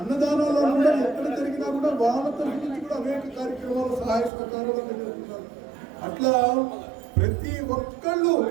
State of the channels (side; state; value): left; drops out; at 4.3 s